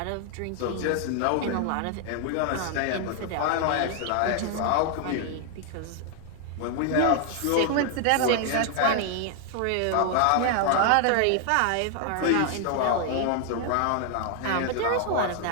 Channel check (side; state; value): both; different; correlation 0.00